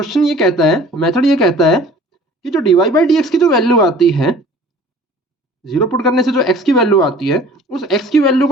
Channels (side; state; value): both; normal; correlation 0.48